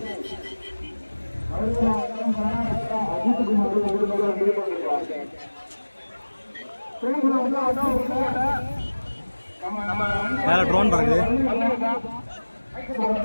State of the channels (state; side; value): inverted; both; correlation -1.00